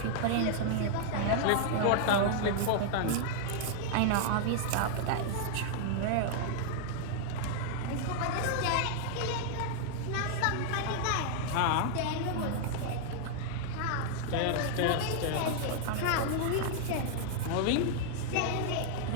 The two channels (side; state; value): both; different; correlation -0.01